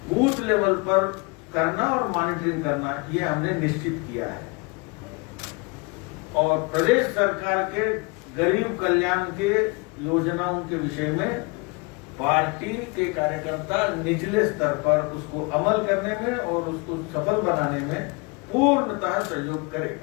बूथ लेवल पर करना और मॉनिटरिंग करना, ये हमने निश्चित किया है। और प्रदेश सरकार के गरीब कल्याण के योजनाओं के विषय में पार्टी के कार्यकर्ता निचले स्तर पर उसको अमल करने में और उसको सफल बनाने में पूर्णतः सहयोग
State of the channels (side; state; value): right; quieter; 29.0 dB